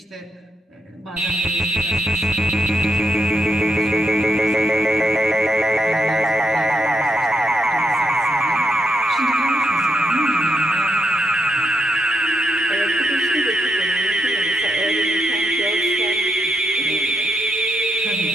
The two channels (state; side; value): normal; both; correlation 0.78